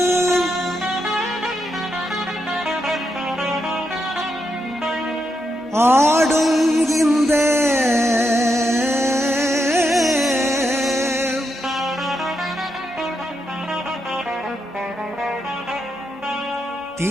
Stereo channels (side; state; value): both; normal; correlation 0.83